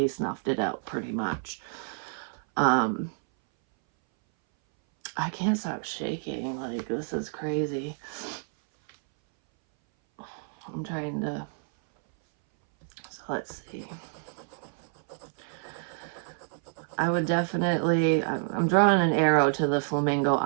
snuffed it out pretty much. Um, I can't stop shaking. Like, this is crazy. I'm trying to. So let's see. I would definitely. I'm drawing an arrow to the Flamingo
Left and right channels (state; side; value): silent; left; 59 dB below the other